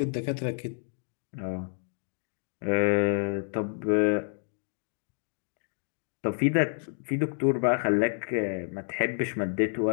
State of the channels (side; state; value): right; silent; 58 dB below the other